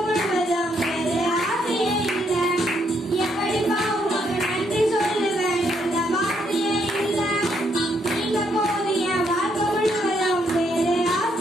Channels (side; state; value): both; normal; correlation 0.74